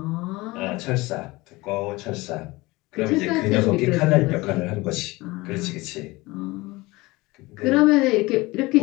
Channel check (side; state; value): right; quieter; 21.6 dB